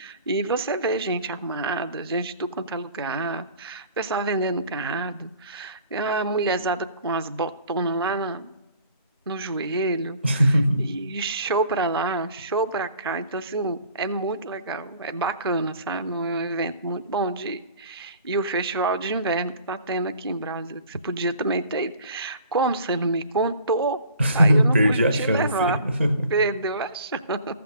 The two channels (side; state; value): both; inverted; correlation -0.50